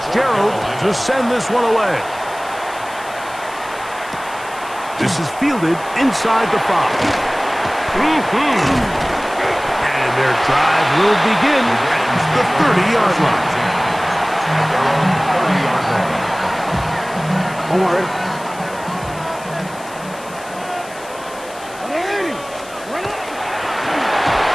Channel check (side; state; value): left; noise; hiss, 19 dB below the sound